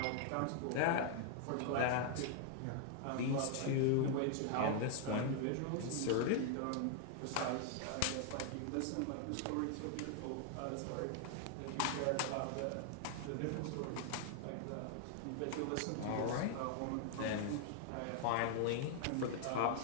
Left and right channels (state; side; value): different; both; correlation 0.00